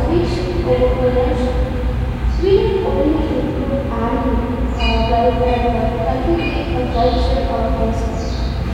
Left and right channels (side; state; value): both; identical; correlation 1.00